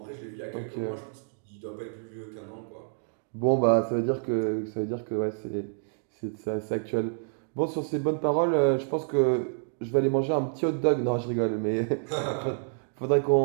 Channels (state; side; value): silent; left; digital silence